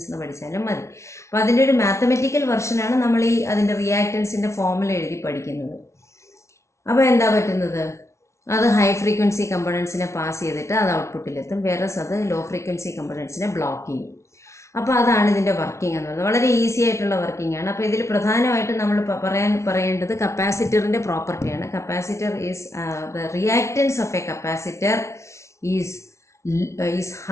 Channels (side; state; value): right; late; 0.13 ms